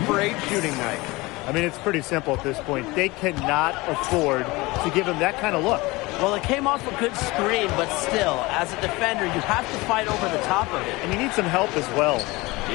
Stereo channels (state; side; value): quieter; right; 22.5 dB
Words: shooting night. I mean, it's pretty simple at this point. They cannot afford to give him that kind of look. Well, it came off a good screen, but still, as a defender, you have to fight over the top of it. And you need some help as well.